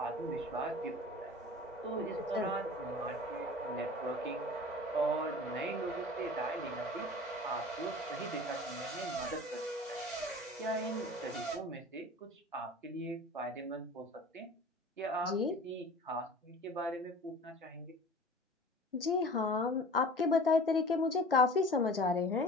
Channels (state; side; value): normal; both; correlation 0.41